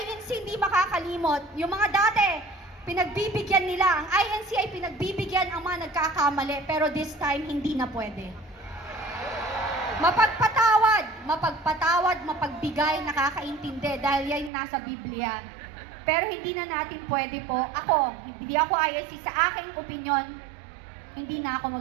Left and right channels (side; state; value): left; drops out; at 14.5 s